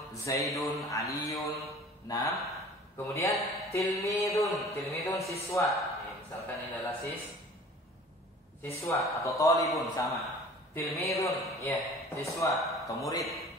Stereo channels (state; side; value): normal; both; correlation 0.46